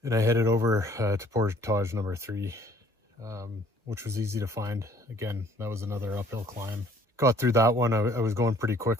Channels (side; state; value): both; normal; correlation 0.58